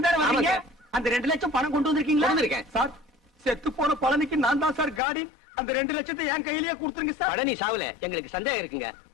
வரீங்க. அந்த 2 லட்சம் பணம் கொண்டு வந்திருக்கீங்களா? வந்திருக்கேன். சார், செத்து போன பழனிக்கு நான் தான் சார் காடி. அந்த 2 லட்சத்தை என் கையிலேயே கொடுத்துருங்க சார். பழனி சாவுல எங்களுக்கு சந்தேகம் இருக்குங்க.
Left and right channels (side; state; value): right; drops out; at 5.0 s